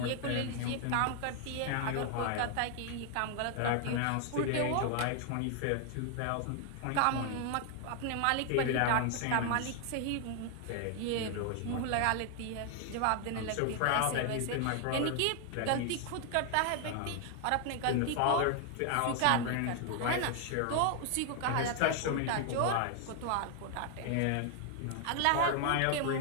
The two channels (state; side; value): different; both; correlation 0.00